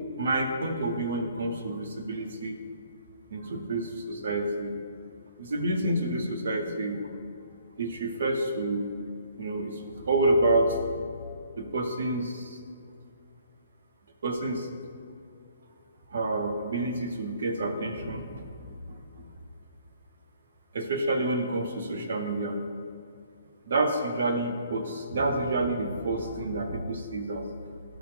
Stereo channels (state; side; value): inverted; both; correlation -0.63